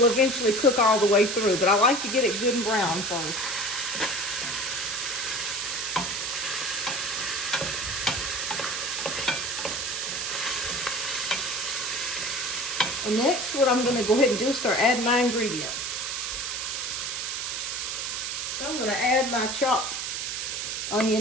eventually cook all the way through. But I like to get it good and brown first. And next, what I'm going to go ahead and do is start adding my ingredients. So I'm going to add my chopped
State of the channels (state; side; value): noise; right; hiss, 3 dB below the sound